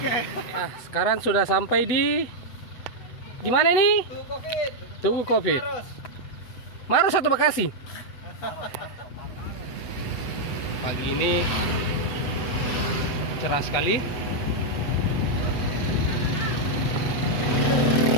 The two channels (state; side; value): late; right; 8.0 ms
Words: Ya, sekarang sudah sampai di mana ini? Tugu Covid. Maros atau Bekasi? Pagi ini cerah sekali.